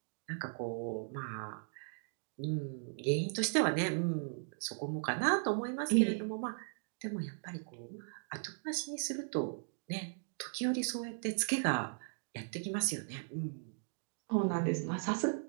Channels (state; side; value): silent; left; digital silence